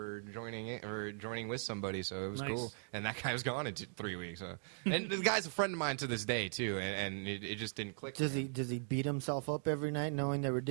joining with somebody, so it was Nice. cool. And that guy was gone in 3 weeks. So. And the guy's a friend of mine to this day too, and it just didn't click. Does he beat himself up every night knowing that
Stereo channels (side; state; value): left; silent; digital silence